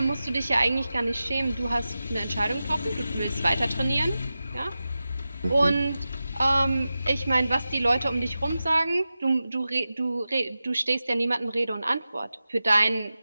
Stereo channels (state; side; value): inverted; both; correlation -0.93